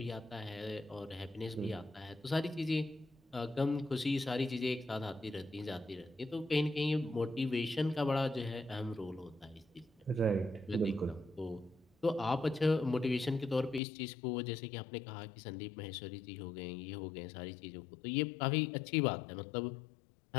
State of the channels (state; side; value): drops out; right; at 13.8 s